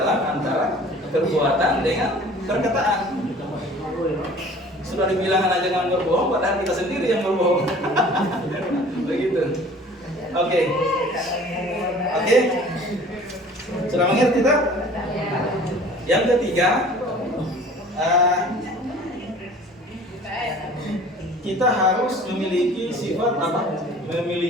antara perbuatan dengan perkataan. Sudah dibilang anak jangan berbohong, padahal kita sendiri yang berbohong. Begitu. Oke. Sudah mengerti tak? Yang ketiga, kita harus memiliki sifat apa?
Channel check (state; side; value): normal; both; correlation 0.47